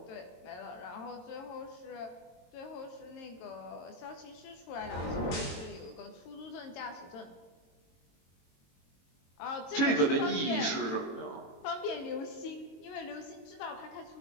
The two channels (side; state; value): right; late; 22 ms